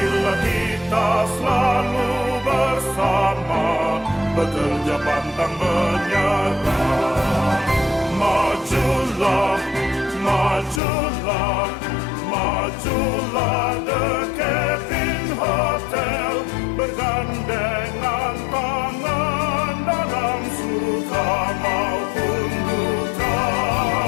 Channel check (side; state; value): right; drops out; at 10.8 s